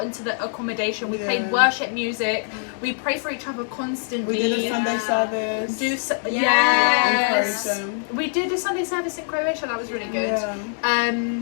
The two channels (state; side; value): silent; right; 63 dB below the other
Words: into the accommodation, we played Yeah. worship music, we prayed for each other constantly. we did a Sunday Yeah. service. Yes. In Croatia. We did a Sunday service in Croatia, that was really good. Yeah.